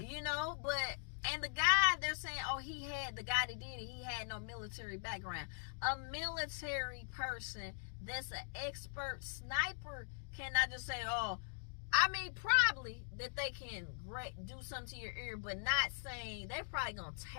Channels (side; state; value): right; silent; digital silence